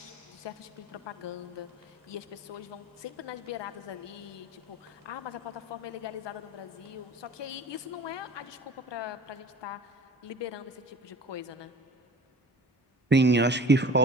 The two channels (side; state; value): both; normal; correlation 0.43